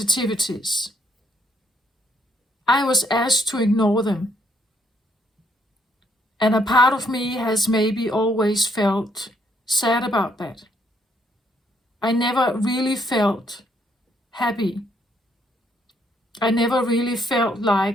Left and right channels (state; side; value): normal; both; correlation 0.71